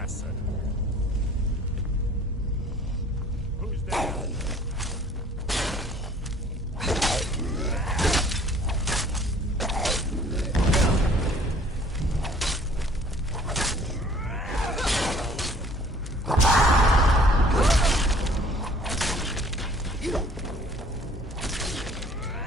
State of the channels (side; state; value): both; normal; correlation 0.54